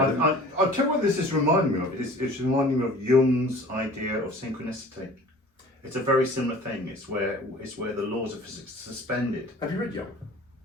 I'll tell you what this is reminding me of. It's reminding me of Jung's idea of synchronicity. It's a very similar thing. It's where the laws of physics are suspended. Have you read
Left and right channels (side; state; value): both; normal; correlation 0.45